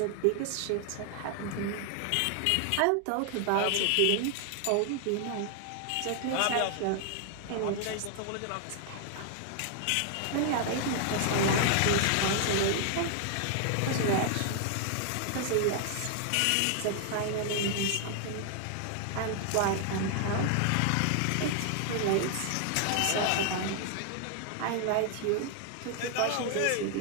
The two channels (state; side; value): different; both; correlation 0.00